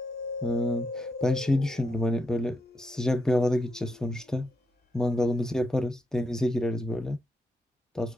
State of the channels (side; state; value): both; normal; correlation 0.82